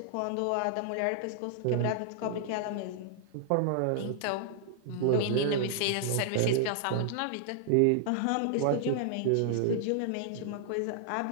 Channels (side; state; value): both; different; correlation -0.01